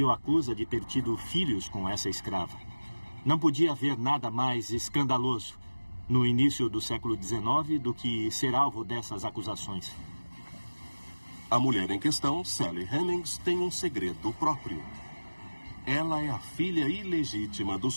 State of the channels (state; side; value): inverted; both; correlation -1.00